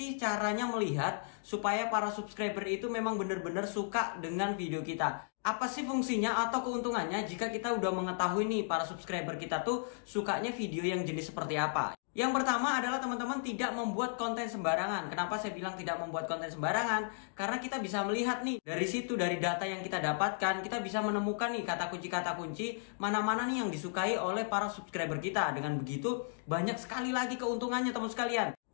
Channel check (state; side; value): silent; right; digital silence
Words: caranya melihat supaya para subscriber itu memang benar-benar suka dengan video kita? Apa sih fungsinya atau keuntungannya jika kita udah mengetahui nih para subscriber kita tuh sukanya video yang jenis seperti apa? Yang pertama adalah teman-teman tidak membuat konten sembarangan. Kenapa saya bilang tidak membuat konten sembarangan? Karena kita bisa melihat nih dari situ, dari data yang kita dapatkan, kita bisa menemukan nih kata kunci mana-mana nih yang disukai oleh para subscriber kita. Dengan begitu banyak sekali lagi keuntungannya teman sekalian.